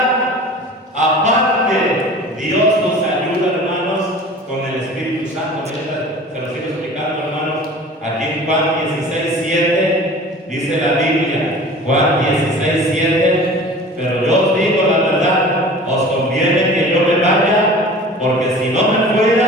Aparte, Dios nos ayuda, hermanos, con el Espíritu Santo. Se lo sigo explicando, hermanos. Aquí en Juan 16:7 dice la Biblia, Juan 16:7, pero yo os digo la verdad, os conviene que yo me vaya, porque si no me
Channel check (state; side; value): normal; both; correlation 0.41